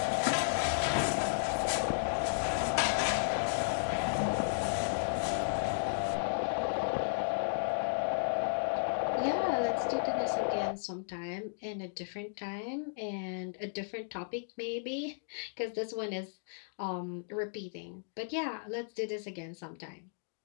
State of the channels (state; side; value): silent; right; digital silence